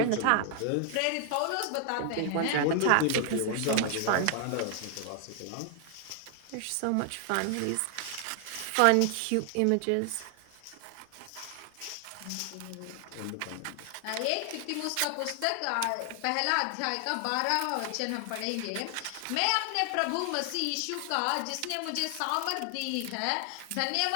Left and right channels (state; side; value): different; both; correlation 0.00